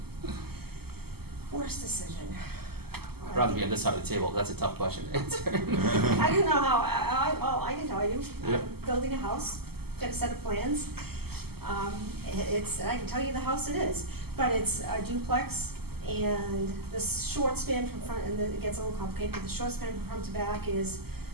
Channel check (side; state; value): left; late; 0.96 ms